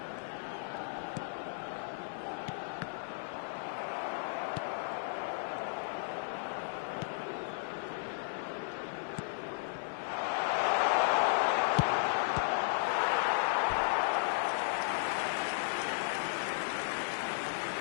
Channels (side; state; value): right; silent; 55 dB below the other